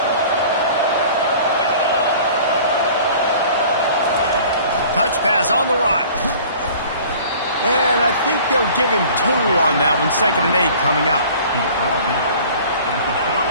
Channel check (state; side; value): inverted; both; correlation -0.47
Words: Touch pass on the run. And I think they'll give him 2 on that one. 2nd and 8 coming up.